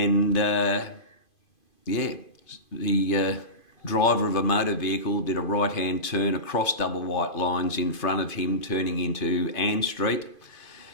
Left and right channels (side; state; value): right; late; 2.5 ms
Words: the driver of a motor vehicle did a right-hand turn across double white lines in front of him, turning into Ann Street.